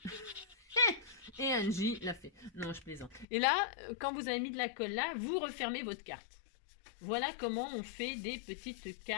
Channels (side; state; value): right; drops out; at 3.2 s